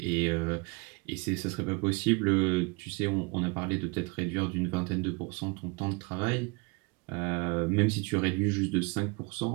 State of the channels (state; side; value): quieter; left; 29.0 dB